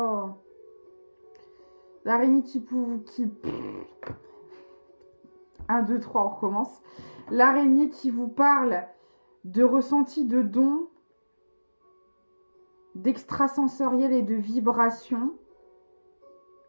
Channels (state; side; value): inverted; both; correlation -1.00